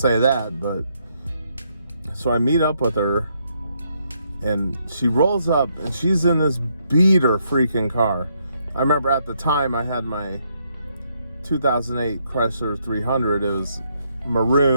that, but so I meet up with her, and she rolls up, and she's in this beater freaking car. I remember at the time I had my 2008 Chrysler 300. It was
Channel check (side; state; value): both; inverted; correlation -0.75